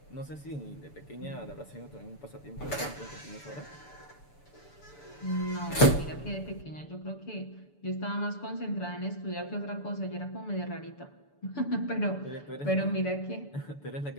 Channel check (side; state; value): right; late; 6.9 ms